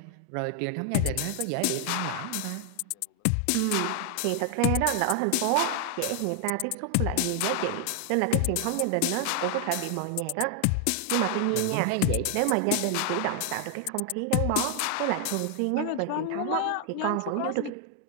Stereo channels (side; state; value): both; different; correlation 0.00